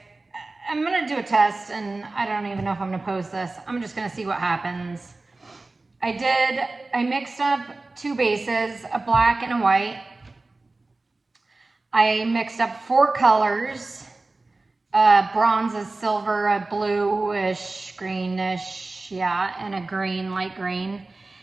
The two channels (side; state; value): left; quieter; 3.3 dB